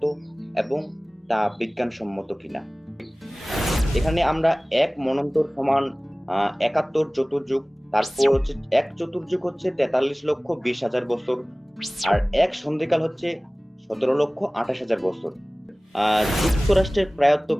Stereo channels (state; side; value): normal; both; correlation 0.98